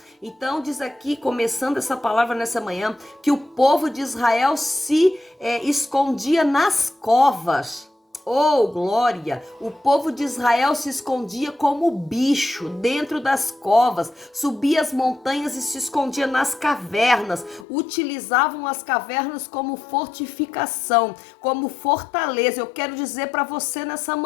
Então diz aqui, começando essa palavra nessa manhã, que o povo de Israel se escondia nas covas. Oh, glória! O povo de Israel se escondia como bicho dentro das covas, subia as montanhas e se escondia nas cavernas. Utilizavam as cavernas como fortificação, como fortaleza. Eu quero dizer para você nessa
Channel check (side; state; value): right; drops out; at 17.7 s